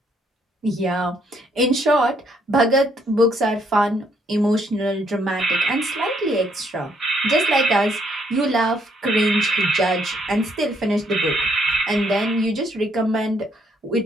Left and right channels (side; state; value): both; normal; correlation 0.70